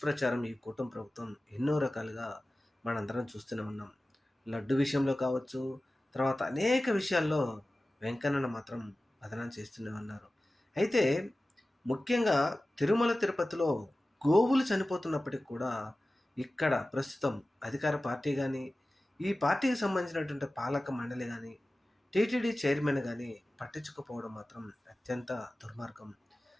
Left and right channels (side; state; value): both; normal; correlation 0.96